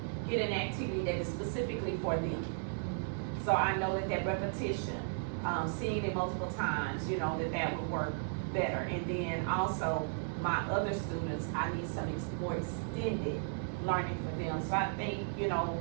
get an activity that is specifically for them. So I know that repetition, seeing it multiple times, you know, that would work better. And then also, my other students, I need some more extended learning for them. So I think, you know,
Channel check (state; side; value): silent; left; digital silence